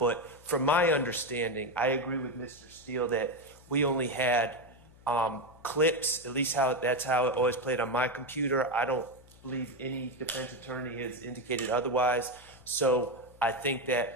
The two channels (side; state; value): left; noise; hum, 24 dB below the sound